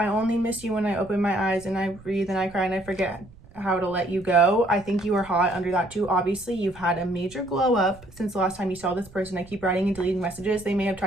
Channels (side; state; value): right; noise; rumble, 22 dB below the sound